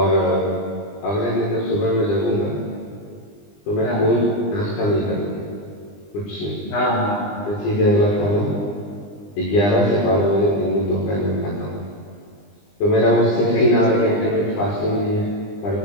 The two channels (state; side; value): late; right; 20 ms